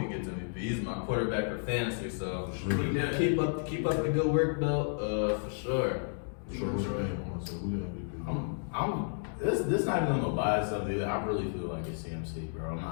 he gets MVP. He's my quarterback for fantasy, so Yeah. keep up the good work though. For sure. This not even on no bias stuff either. I really feel like it's CMC, bro.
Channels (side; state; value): right; silent; digital silence